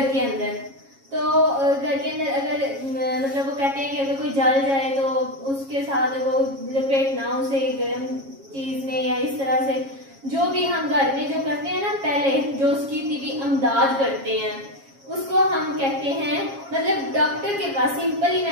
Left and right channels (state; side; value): late; left; 7.3 ms